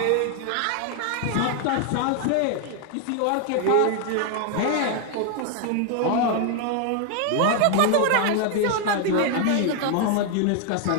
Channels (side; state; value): both; different; correlation 0.00